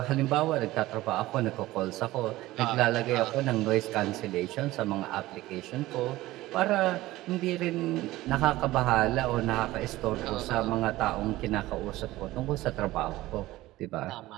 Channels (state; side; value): quieter; left; 17.3 dB